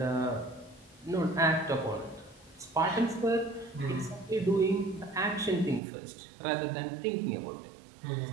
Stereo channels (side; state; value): left; drops out; at 5.8 s